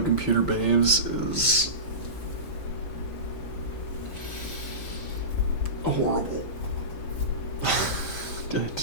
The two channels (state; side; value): late; right; 5.0 ms